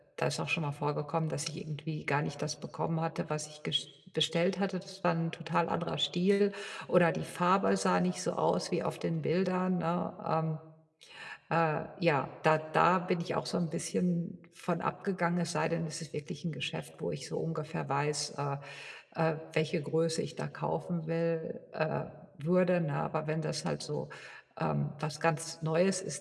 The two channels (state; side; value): identical; both; correlation 1.00